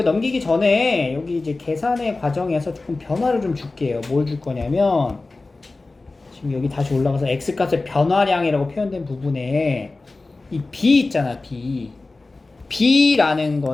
넘기기 전에 여기 이제 계산의 과정에서 조금 변화를 좀 줄게요. 뭘 줄 거냐면, 지금 여기 다시 올라가서 x값의 변화량이라고 표현된 부분에 이 b 있잖아, b. b라는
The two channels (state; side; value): quieter; right; 3.4 dB